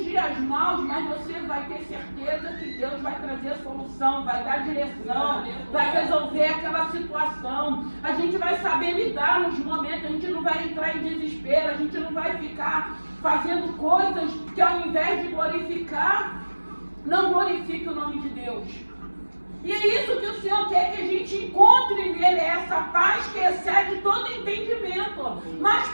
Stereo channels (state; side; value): inverted; both; correlation -1.00